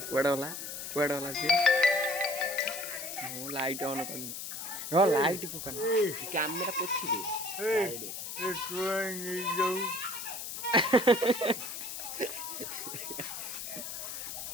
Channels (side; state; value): left; noise; hiss, 7 dB below the sound